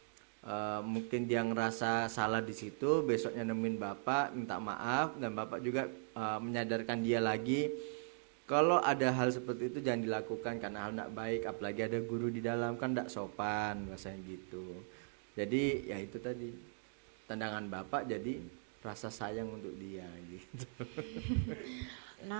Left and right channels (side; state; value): left; silent; digital silence